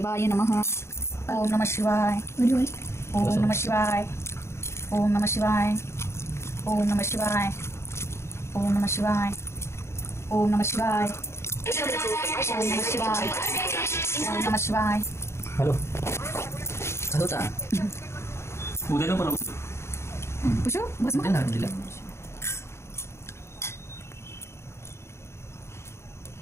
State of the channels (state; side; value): late; right; 0.13 ms